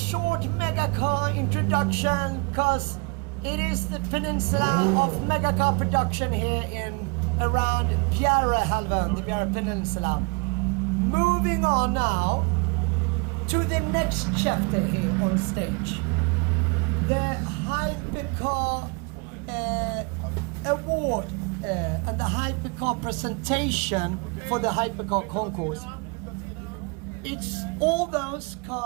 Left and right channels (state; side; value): quieter; left; 31.3 dB